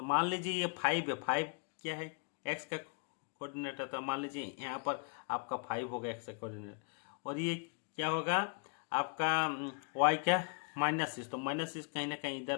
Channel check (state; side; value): quieter; right; 39.6 dB